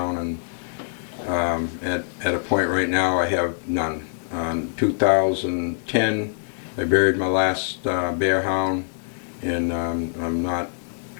and at a point right now I have none. In 2010 I buried my last bear hound, and I'm not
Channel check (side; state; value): right; silent; 58 dB below the other